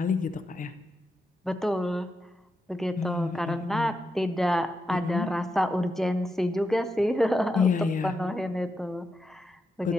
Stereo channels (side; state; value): both; normal; correlation 0.85